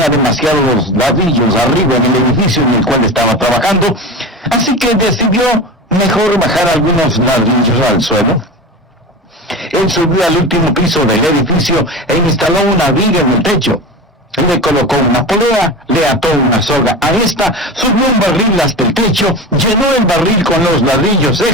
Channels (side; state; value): both; normal; correlation 0.28